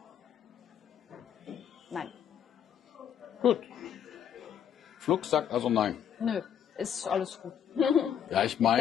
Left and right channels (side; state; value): right; quieter; 8.9 dB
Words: Nein. Gut. Flux sagt also nein. Nö, ist alles gut. Ja, ich